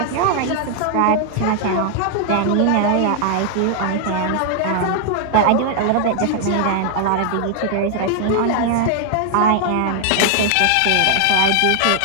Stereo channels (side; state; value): both; different; correlation 0.00